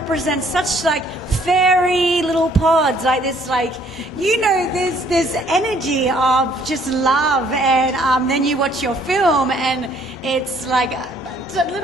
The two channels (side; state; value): both; normal; correlation 0.62